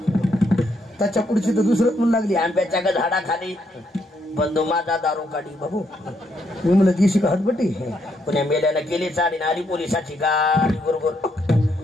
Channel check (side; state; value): both; normal; correlation 0.75